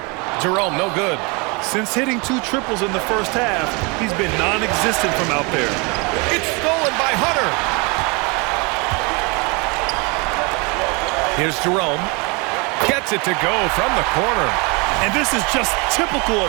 Jerome, no good. Since hitting 2 triples in the first half, he's been non-existent from out there. It's stolen by Hunter. Here's Jerome. Gets it to go from the corner. And this is just typical of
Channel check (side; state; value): left; quieter; 29.6 dB